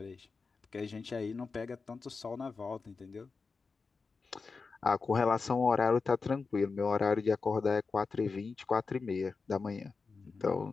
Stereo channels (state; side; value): quieter; right; 4.6 dB